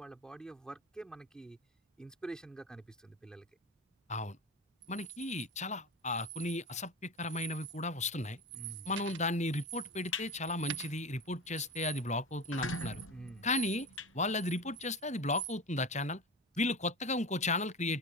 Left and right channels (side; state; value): both; normal; correlation 0.27